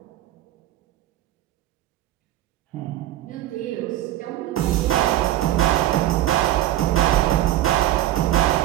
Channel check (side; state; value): left; quieter; 13.8 dB